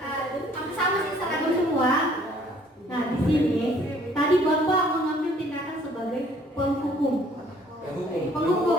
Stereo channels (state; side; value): normal; both; correlation 0.59